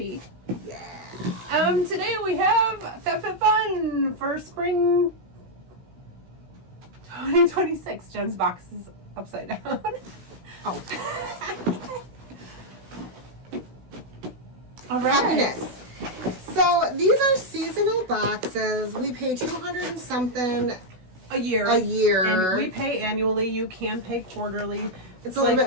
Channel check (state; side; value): late; left; 16 ms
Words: Yeah. Today we have FabFitFun for spring 2026. Jen's box is upside down. Oh. All right. Happiness. So these are seasonal boxes. We pay $200 and something a year. And we pay annually. You can pay quarterly. It's a little bit